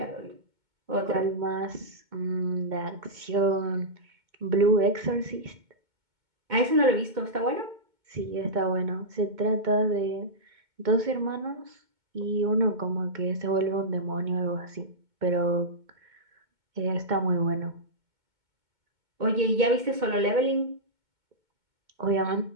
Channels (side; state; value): left; late; 2.2 ms